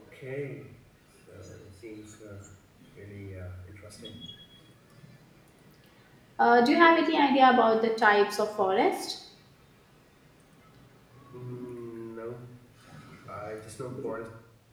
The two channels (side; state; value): both; identical; correlation 1.00